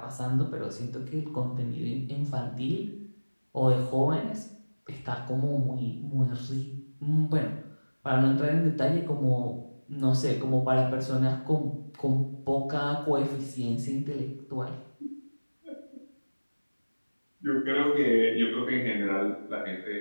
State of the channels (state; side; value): inverted; both; correlation -1.00